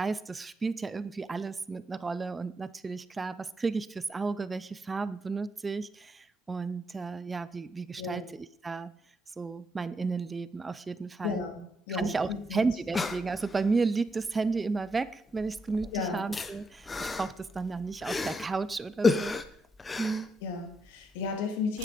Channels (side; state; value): both; normal; correlation 0.81